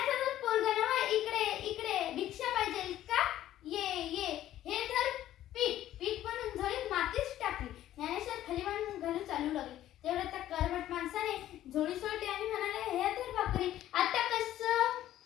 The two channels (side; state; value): right; quieter; 13.0 dB